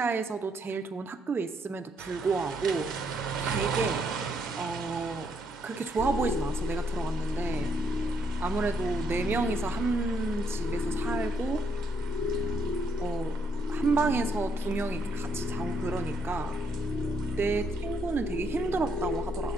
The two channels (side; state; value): both; normal; correlation 0.73